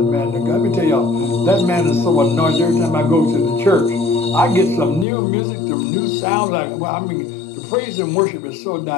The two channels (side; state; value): right; drops out; at 5.1 s